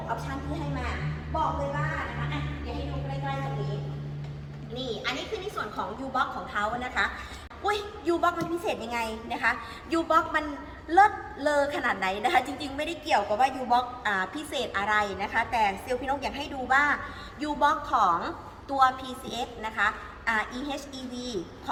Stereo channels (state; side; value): identical; both; correlation 1.00